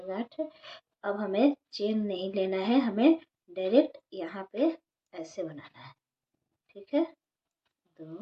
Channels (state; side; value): identical; both; correlation 1.00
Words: गांठ। अब हमें चेन नहीं लेना है, हमें डायरेक्ट यहाँ पे ऐसे बनाना है, ठीक है।